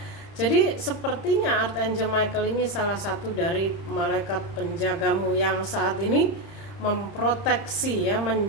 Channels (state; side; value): late; right; 30 ms